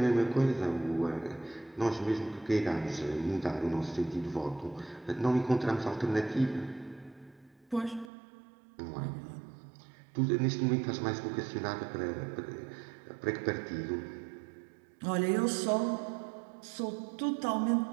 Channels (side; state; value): left; drops out; at 8.1 s